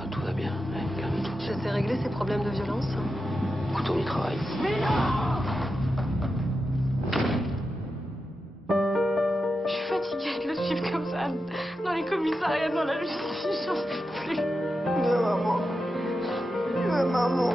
tout va bien. Ouais, calme-toi. Je sais régler ces problèmes de violence. Écoute, on y travaille. Je suis fatiguée de le suivre comme ça, dans les commissariats, dans la justice, j'en peux plus.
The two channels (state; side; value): normal; both; correlation 0.89